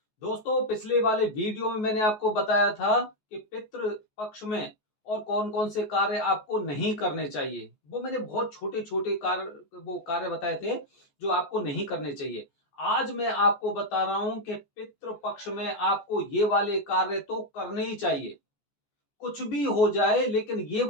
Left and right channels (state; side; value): late; right; 14 ms